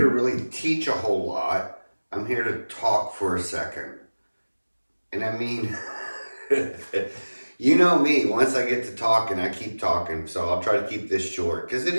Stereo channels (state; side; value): inverted; both; correlation -1.00